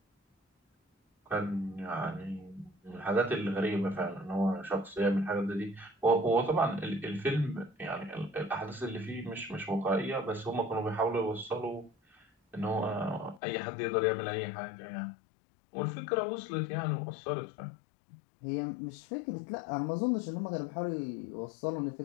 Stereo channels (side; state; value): right; drops out; at 13.4 s